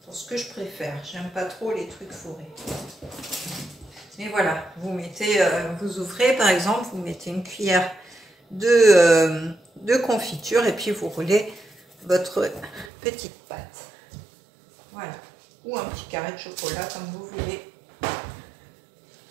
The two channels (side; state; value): left; drops out; at 12.9 s